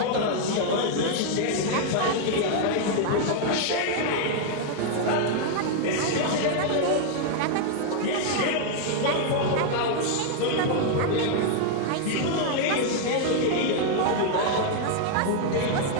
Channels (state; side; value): different; both; correlation 0.00